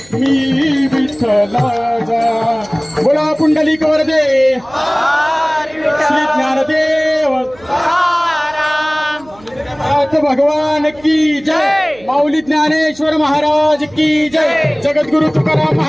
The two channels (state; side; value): noise; right; hum, 25 dB below the sound